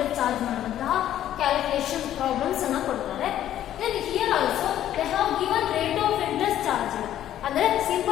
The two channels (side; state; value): right; quieter; 11.8 dB